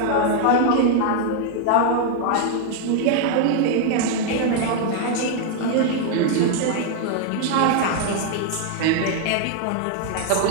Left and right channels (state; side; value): different; both; correlation 0.00